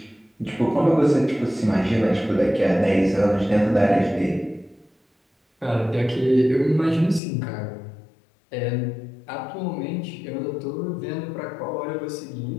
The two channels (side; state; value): right; drops out; at 7.2 s